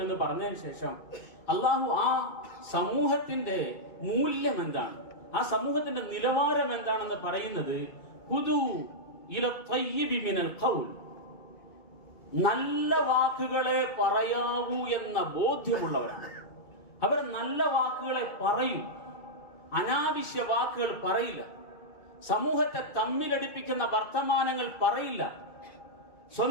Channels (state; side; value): late; right; 2.2 ms